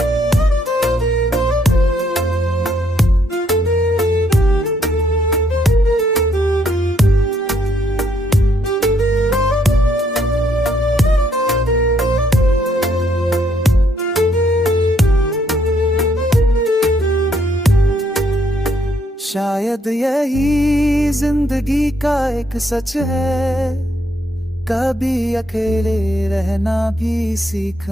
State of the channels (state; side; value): normal; both; correlation 0.71